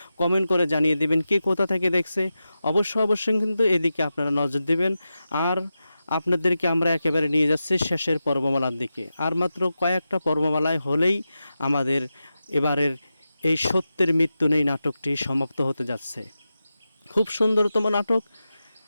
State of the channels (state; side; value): inverted; both; correlation -0.91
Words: কমেন্ট করে জানিয়ে দিবেন কে কোথা থেকে দেখছে। অবশ্যই কিন্তু এদিকে আপনারা নজর দিবেন। আর আপনাদেরকে আমরা একেবারে নিয়ে যাচ্ছি শেষের পর্বমালার দিকে। আর মাত্র কয়েকটা পর্বমালায় হলেই আমাদের এবারের এই সত্যের মৃত্যু নেই নাটকটি সমাপ্ত হতে যাচ্ছে। খুব সুন্দরতম নাটক